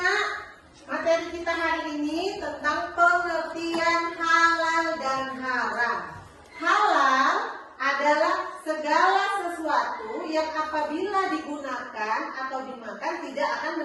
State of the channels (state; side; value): identical; both; correlation 1.00